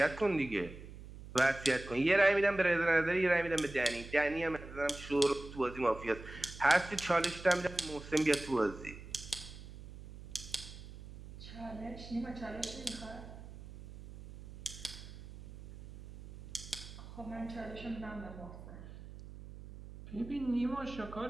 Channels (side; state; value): right; noise; hum, 14 dB below the sound